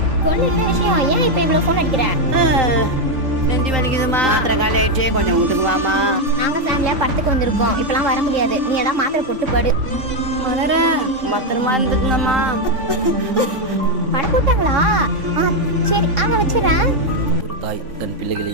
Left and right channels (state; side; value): late; left; 3.5 ms